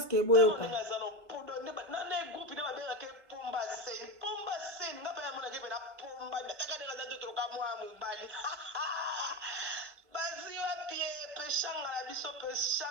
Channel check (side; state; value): left; late; 1.5 ms